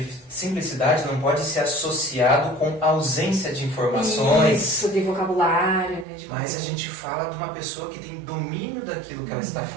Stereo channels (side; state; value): left; drops out; at 6.1 s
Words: não pode ser associado com ausência de informações. Isso, de vocabulário, né? Mas a gente fala de uma pessoa que tem domínio daquilo que ela está